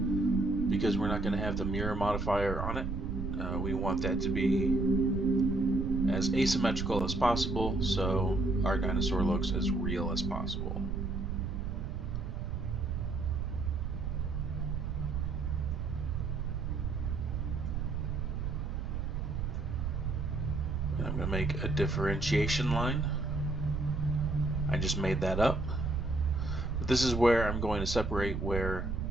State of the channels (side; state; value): right; noise; rumble, 2 dB below the sound